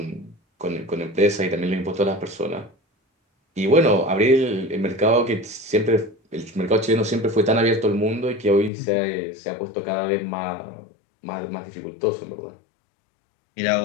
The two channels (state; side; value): drops out; right; at 8.7 s